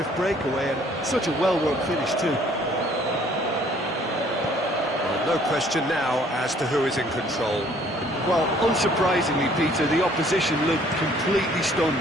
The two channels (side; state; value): both; normal; correlation 0.59